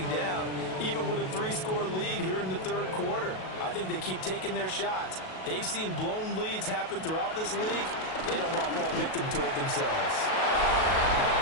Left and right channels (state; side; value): late; right; 37 ms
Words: down, even with a 3-score lead here in the 3rd quarter. I think they keep taking their shots. They've seen blown leads happen throughout this league. They don't want to fall victim to it themselves.